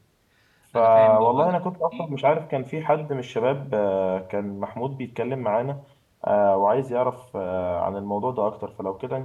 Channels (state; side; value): identical; both; correlation 1.00